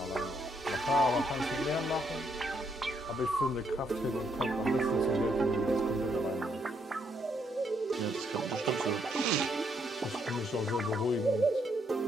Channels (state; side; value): normal; both; correlation 0.74